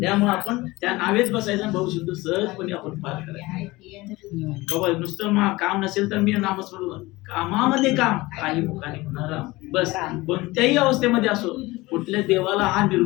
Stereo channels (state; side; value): quieter; right; 20.8 dB